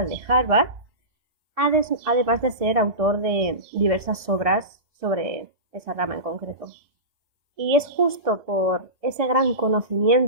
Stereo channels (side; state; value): left; late; 1.7 ms